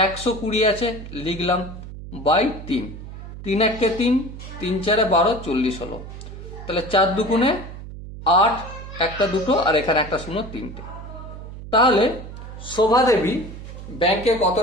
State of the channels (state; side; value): noise; right; hum, 12 dB below the sound